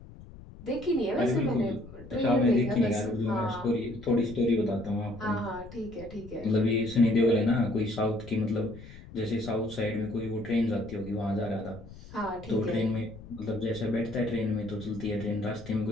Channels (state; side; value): noise; left; rumble, 17 dB below the sound